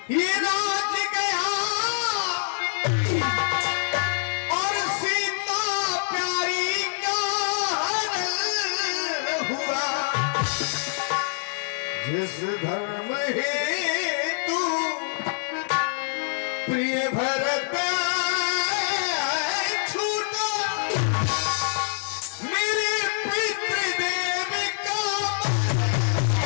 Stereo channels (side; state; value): right; silent; 58 dB below the other